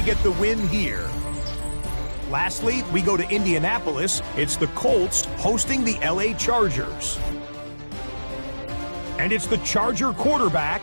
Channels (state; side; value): inverted; both; correlation -1.00